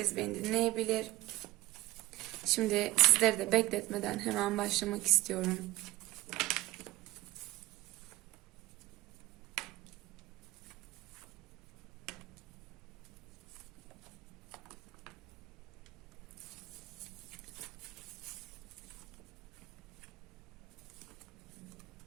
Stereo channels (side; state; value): left; quieter; 17.6 dB